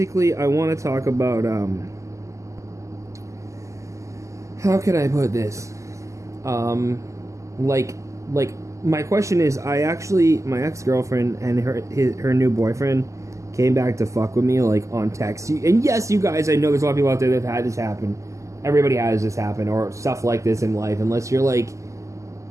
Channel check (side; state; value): left; late; 0.15 ms